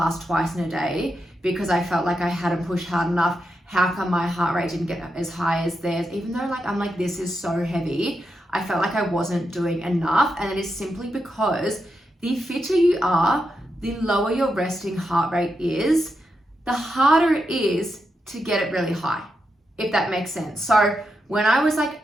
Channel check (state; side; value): normal; both; correlation 0.85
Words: twice in a day because I felt like I hadn't pushed hard enough. How come my heart rate didn't get as high as theirs? Even though I'm this is so heavy, I felt like I wasn't doing enough. And it is simply because the fitter you are, the lower your resting heart rate is, the harder it is to get it really high, if that makes sense. So when I was like